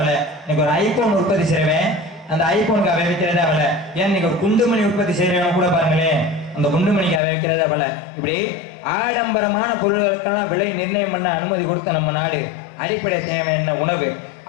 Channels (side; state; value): right; drops out; at 7.2 s